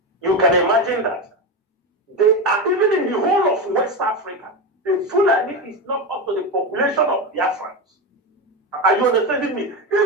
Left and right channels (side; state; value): both; normal; correlation 0.16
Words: You can imagine that. They are even in the whole of West Africa. The Fulani is not up to the population of Biafrans. Are you understanding me?